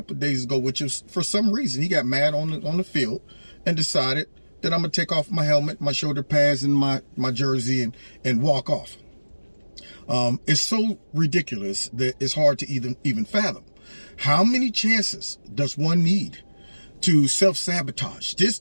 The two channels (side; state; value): both; inverted; correlation -1.00